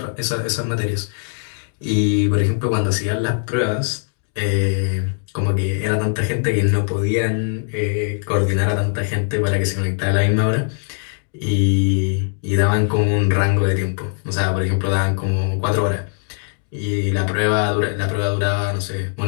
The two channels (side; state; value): right; silent; digital silence